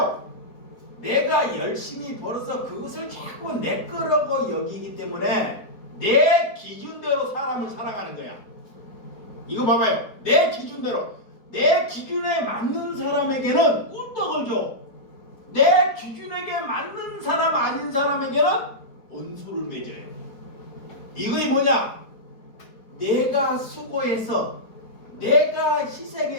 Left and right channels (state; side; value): late; right; 4.5 ms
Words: 내가 열심히 벌어서 그것을 자꾸 내 거라고 여기기 때문에 내 기준대로 사람을 살아가는 거야. 이거 봐봐요. 내 기준대로, 내 기준에 맞는 사람에게는 꿀떡을 줘. 내 기준에게 맞는 사람 아닌 사람에게는 원수를 맺어요. 이거이 뭐냐? 내가 수고해서 내가